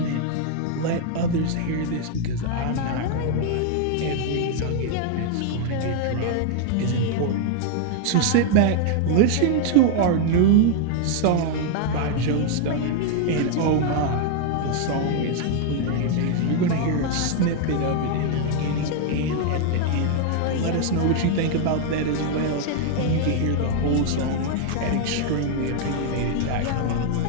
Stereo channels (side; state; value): both; different; correlation 0.00